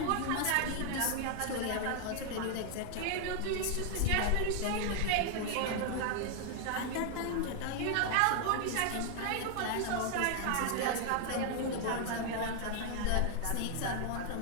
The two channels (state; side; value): different; both; correlation 0.00